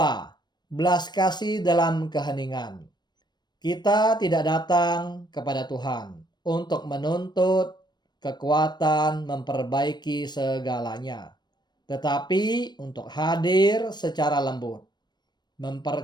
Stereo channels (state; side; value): late; right; 0.21 ms